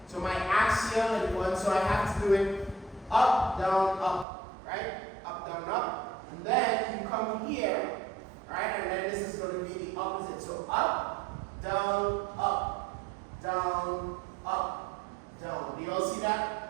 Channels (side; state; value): left; drops out; at 4.2 s